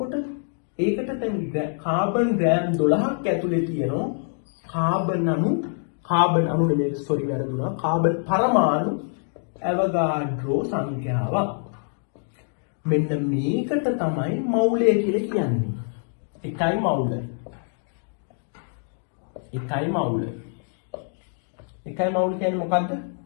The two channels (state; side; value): silent; right; 62 dB below the other